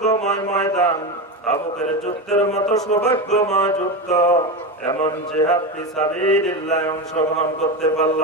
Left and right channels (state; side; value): normal; both; correlation 0.18